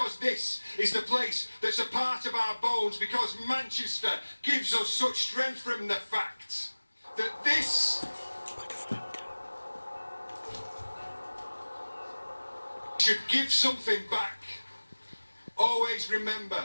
this is the place that's a part of our bones, because Manchester gives us such strength from the fact that this should give something back. Always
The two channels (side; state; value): both; inverted; correlation -1.00